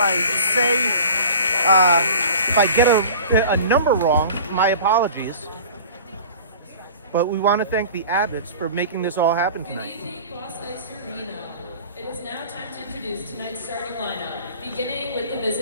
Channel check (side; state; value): both; inverted; correlation -0.41